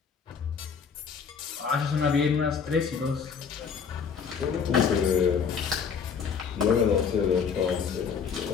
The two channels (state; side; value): quieter; right; 6.4 dB